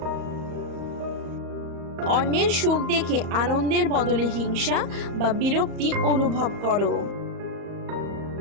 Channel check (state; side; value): late; left; 35 ms